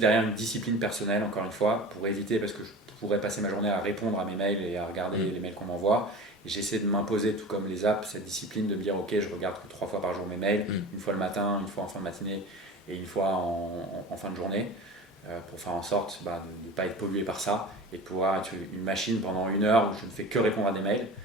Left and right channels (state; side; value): normal; both; correlation 0.35